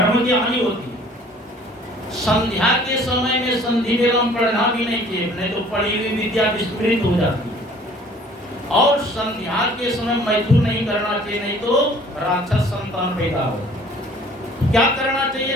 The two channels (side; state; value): both; normal; correlation 0.53